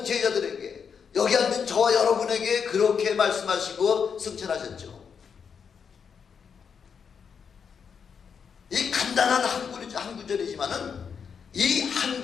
제자들에게, 여기 앉은 저와 여러분에게 그렇게 말씀하시고 승천하셨죠. 이 간단한 한 구절이지만은 이 한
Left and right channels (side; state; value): right; quieter; 6.6 dB